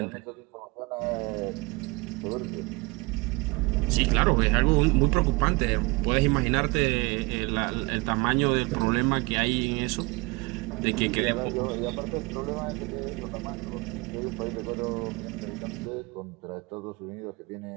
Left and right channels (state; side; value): quieter; left; 25.8 dB